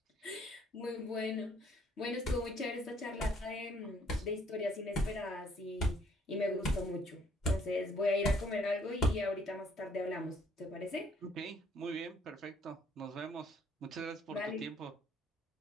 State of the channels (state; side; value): normal; both; correlation 0.64